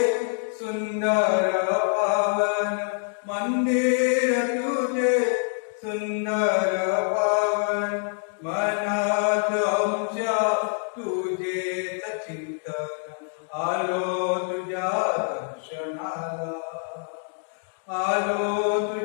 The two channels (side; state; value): right; silent; 58 dB below the other